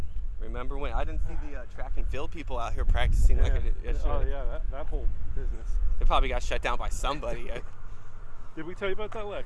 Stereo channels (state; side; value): identical; both; correlation 1.00